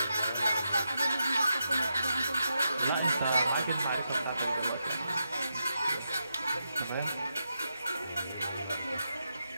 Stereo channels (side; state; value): both; inverted; correlation -0.85